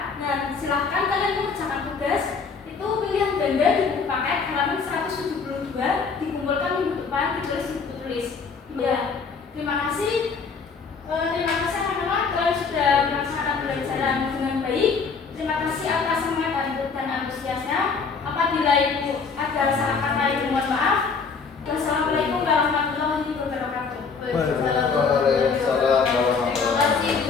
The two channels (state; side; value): quieter; right; 5.2 dB